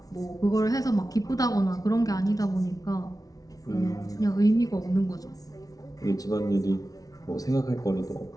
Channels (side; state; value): right; late; 0.18 ms